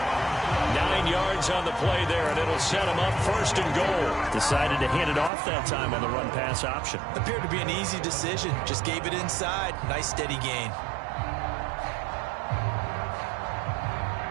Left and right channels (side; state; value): left; drops out; at 5.3 s